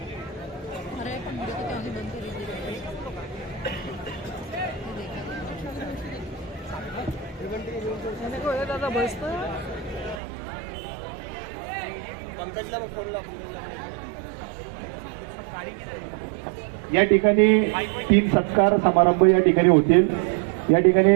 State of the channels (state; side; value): drops out; left; at 10.2 s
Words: दादा बस या ठिकाणी 3 सत्कार समारंभ या ठिकाणी होतील. या ठिकाणी